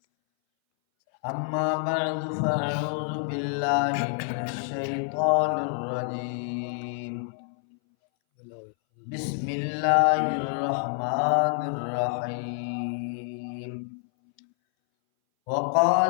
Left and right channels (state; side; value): silent; right; 59 dB below the other